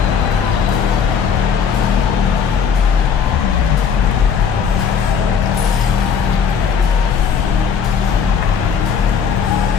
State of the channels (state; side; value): quieter; right; 6.8 dB